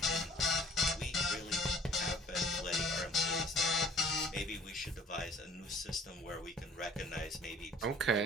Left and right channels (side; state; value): both; normal; correlation 0.53